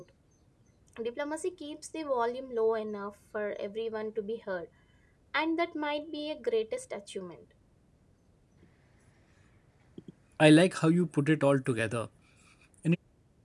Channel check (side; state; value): both; identical; correlation 1.00